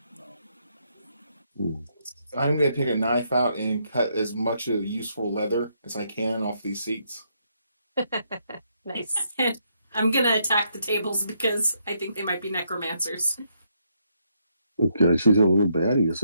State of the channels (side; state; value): both; inverted; correlation -0.76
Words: I'm going to take a knife out and cut as much of useful leather as I can off these seats. Nice. I'm gonna attack the tables because I think they might be necromancers. Okay, she's a little baddie,